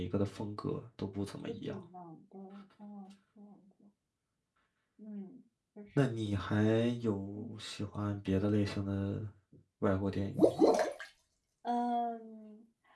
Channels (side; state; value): both; identical; correlation 1.00